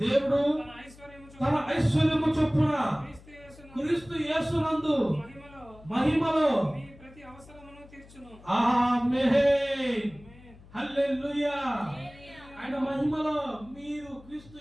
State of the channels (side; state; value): left; noise; hum, 22 dB below the sound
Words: తన ఐశ్వర్యము చొప్పున క్రీస్తు యేసునందు మహిమలో ప్రతి అవసరమును తీర్చును. ఆమేన్. హల్లెలూయా. ఆయన మహిమలో మీరు క్రీస్తు